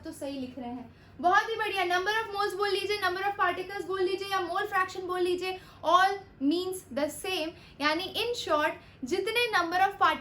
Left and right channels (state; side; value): identical; both; correlation 1.00